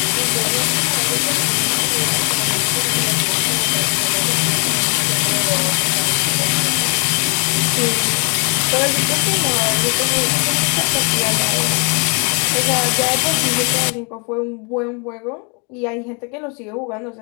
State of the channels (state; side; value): quieter; right; 39.1 dB